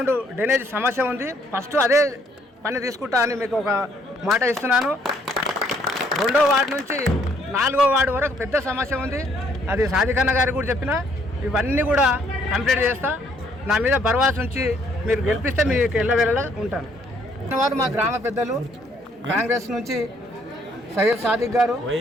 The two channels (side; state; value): both; normal; correlation 0.66